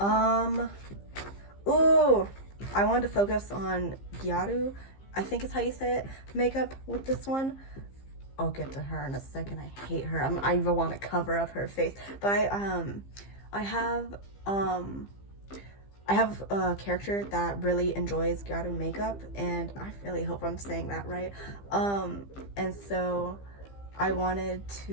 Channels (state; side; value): late; right; 15 ms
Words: Ooh, I wanted to focus on Gyaru, I think is how you say it, makeup with this one. I'll get to her in a second. I hate her. I even want to cover up her face. But I have a character that really enjoys Gyaru makeup, and I really hope I'm saying that right. And so I wanted